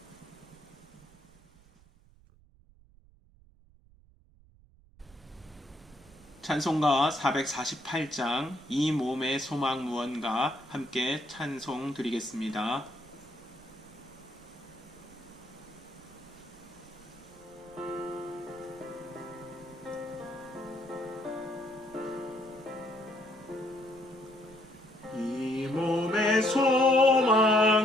찬송가 448장 이 몸의 소망 무언가 함께 찬송 드리겠습니다. 이 몸의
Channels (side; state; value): right; noise; rumble, 27 dB below the sound